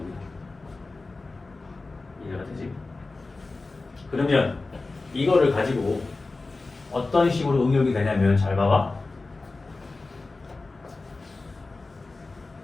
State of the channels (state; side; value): quieter; right; 3.5 dB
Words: 이해가 되지? 그러면 이거를 가지고 어떤 식으로 응용이 되냐면 잘 봐봐.